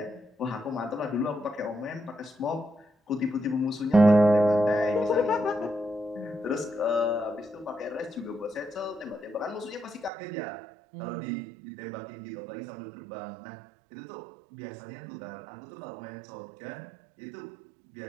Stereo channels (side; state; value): left; drops out; at 10.1 s